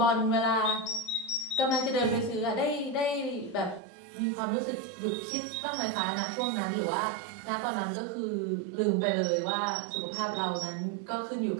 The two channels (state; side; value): drops out; left; at 3.8 s